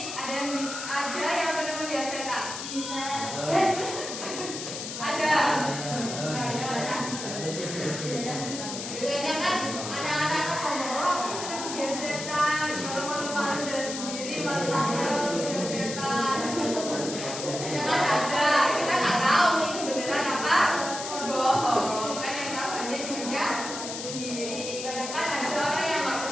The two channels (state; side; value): noise; left; hiss, 7 dB below the sound